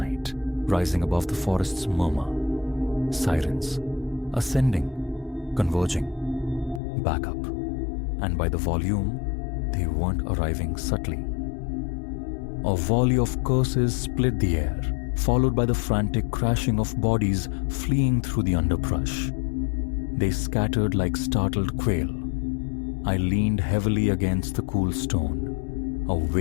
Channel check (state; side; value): drops out; right; at 6.8 s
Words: rising above the forest's murmur. Sirens, ascending, converging, back up, and by the volume, they weren't arriving subtly. A volley of curses split the air, followed by the frantic crashing of bodies fleeing through the underbrush. They scattered like startled quail. I leaned heavily against the cool stone. A